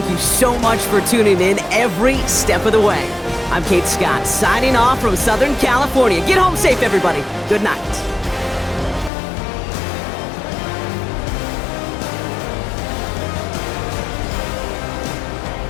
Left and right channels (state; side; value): drops out; right; at 9.1 s